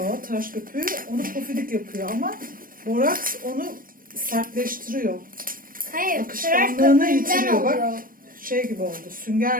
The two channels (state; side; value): late; left; 0.41 ms